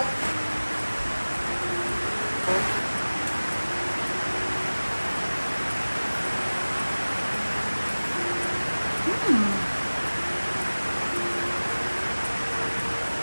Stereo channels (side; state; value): both; inverted; correlation -1.00